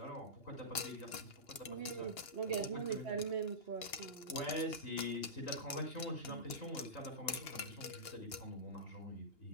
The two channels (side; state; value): right; late; 2.9 ms